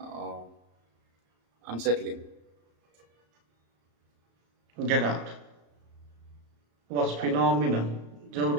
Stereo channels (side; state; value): left; late; 34 ms